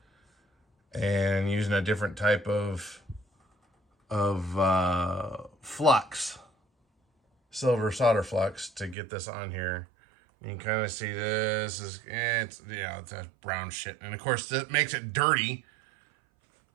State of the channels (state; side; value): drops out; left; at 9.0 s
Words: and using a different type of flux, silver solder flux, to get this on here. You can kind of see this is, it's that brown shit, and of course that makes it dirty,